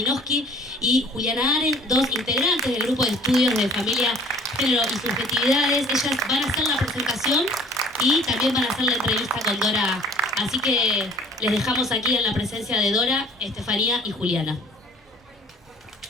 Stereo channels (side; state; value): both; normal; correlation 0.52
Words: y Juliana Aren, dos integrantes del grupo de estudios de familia, género y subjetividades. Ellas van a hacer la presentación y también van a hacer la entrevista con Dora. Así que les dejamos aquí en la presencia de Dora, Estefanía y Juliana.